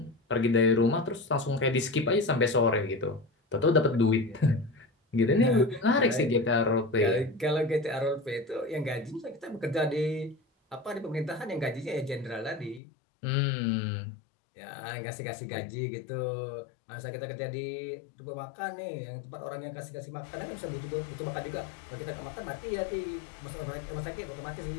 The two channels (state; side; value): drops out; right; at 12.8 s